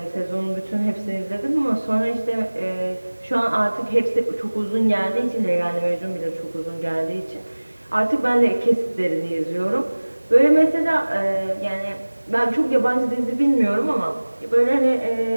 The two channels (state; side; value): inverted; both; correlation -1.00